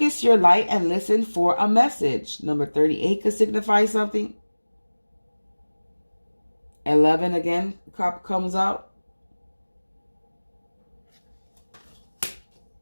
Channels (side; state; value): both; inverted; correlation -1.00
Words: your light and listen for a message. Number 38 could signify something. 11 again comes out.